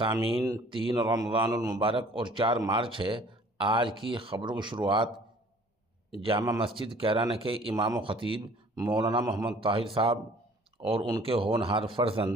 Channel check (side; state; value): both; normal; correlation 0.52